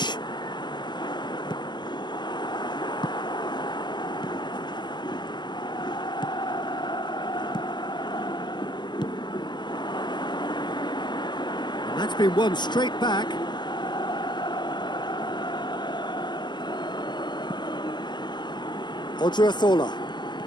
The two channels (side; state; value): right; late; 0.21 ms